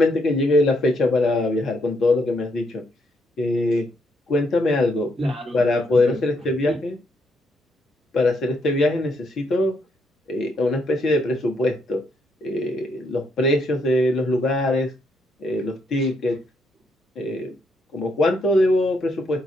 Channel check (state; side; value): normal; both; correlation 0.75